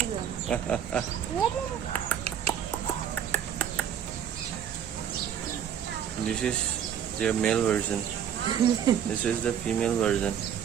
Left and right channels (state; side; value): quieter; left; 9.1 dB